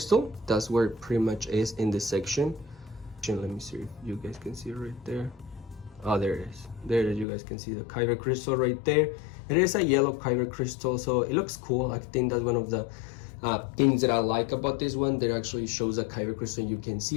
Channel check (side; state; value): right; drops out; at 7.2 s